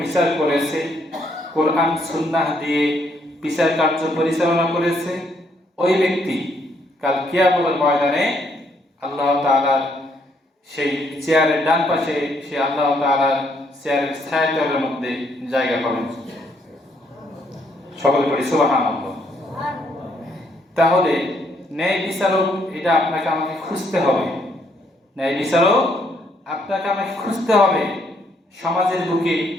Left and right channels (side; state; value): both; normal; correlation 0.71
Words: বিচার করেছে, কোরআন সুন্নাহ দিয়ে বিচার কার্য পরিচালনা করেছে, ওই ব্যক্তি কাল কিয়ামতের ময়দানে আল্লাহ তাআলার সেই চেয়ারের ডান পাশে সে আল্লাহ তাআলার চেয়ারের ছায়াতলের মধ্যে জায়গা পাবেন। সকলে পড়ি সুবহানাল্লাহ। তাহলে ন্যায় বিচারক এটা আপনাকে আমাকে খুঁজতে হবে। ন্যায় বিচারক আপনাকে আমাকে খুঁজতে হবে। সমাজের বুকে